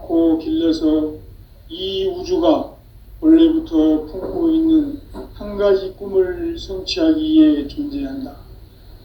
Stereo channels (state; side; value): identical; both; correlation 1.00